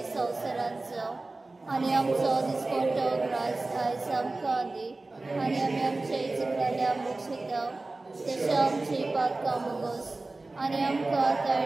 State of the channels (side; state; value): left; quieter; 3.2 dB